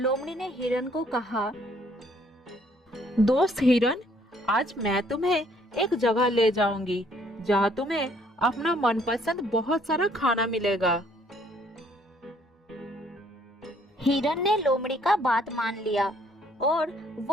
ने हिरन को कहा, दोस्त हिरन, आज मैं तुम्हें एक जगह ले जाऊंगी जहाँ तुम्हें अपना मनपसंद बहुत सारा खाना मिलेगा। हिरन ने लोमड़ी का बात मान लिया और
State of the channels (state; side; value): normal; both; correlation 0.63